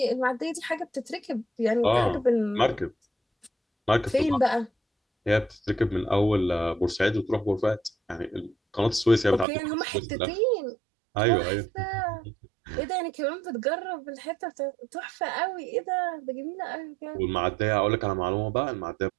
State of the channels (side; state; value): left; drops out; at 9.5 s